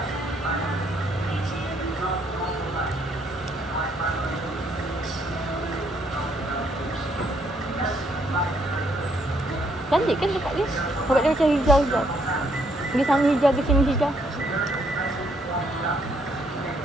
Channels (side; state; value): both; normal; correlation 0.70